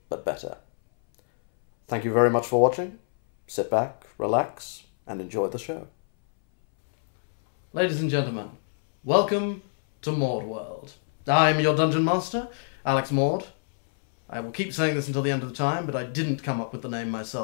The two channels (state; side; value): silent; right; 61 dB below the other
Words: but better. Thank you very much for watching. Sit back, relax, and enjoy the show. Ladies and gentlemen, welcome to MaudeWorld. I'm your Dungeon Master, Alex Maude. I will keep saying this until the end of the time, but I didn't come up with the name